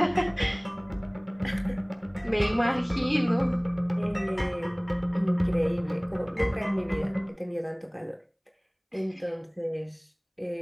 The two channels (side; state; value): both; identical; correlation 1.00